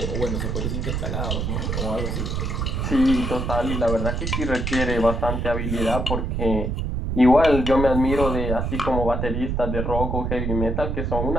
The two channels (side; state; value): right; noise; rumble, 1 dB below the sound